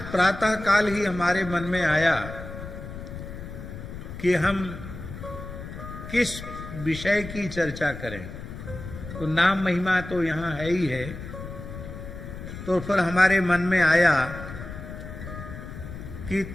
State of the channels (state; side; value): noise; left; rumble, 10 dB below the sound